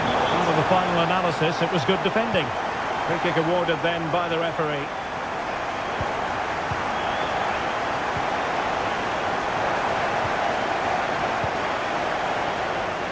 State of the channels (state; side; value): identical; both; correlation 1.00